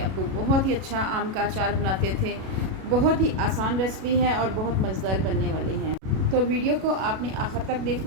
बहुत ही अच्छा आम का अचार बनाते थे। बहुत ही आसान रेसिपी है और बहुत मज़ेदार बनने वाली है। तो वीडियो को आपने आखिर तक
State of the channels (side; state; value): left; late; 37 ms